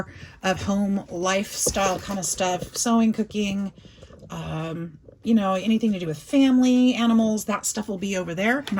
of home lifestyle kind of stuff, sewing, cooking, you know, anything to do with family, animals, that stuff will be over there.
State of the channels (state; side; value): identical; both; correlation 1.00